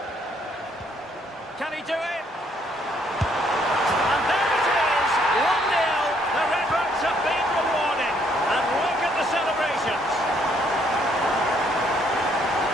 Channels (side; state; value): both; normal; correlation 0.68